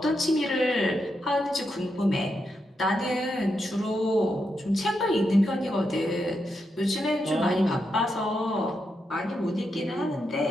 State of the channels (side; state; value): both; normal; correlation 0.84